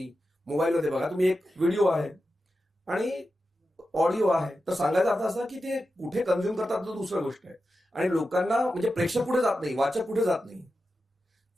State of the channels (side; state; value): both; normal; correlation 0.91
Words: मोबाईलमध्ये बघा, तुम्ही एक व्हिडिओ आहे. आणि ऑडिओ आहे. तर सांगायचा अर्थ असा की ते कुठे कन्झ्युम करतात तो दुसरी गोष्ट आहे. आणि लोकांना म्हणजे प्रेक्षक पुढे जात नाही, वाचक पुढे जात नाही.